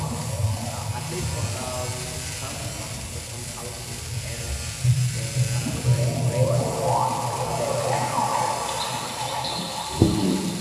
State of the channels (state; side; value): identical; both; correlation 1.00